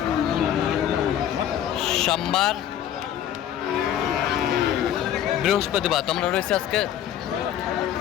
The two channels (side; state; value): right; quieter; 10.6 dB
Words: সোমবার বৃহস্পতিবার। তোমরা রয়েছে আজকে